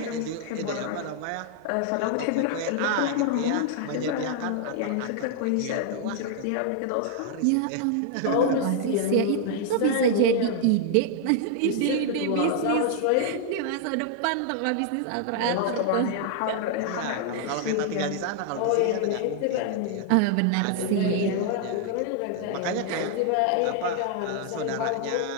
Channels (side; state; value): both; different; correlation 0.00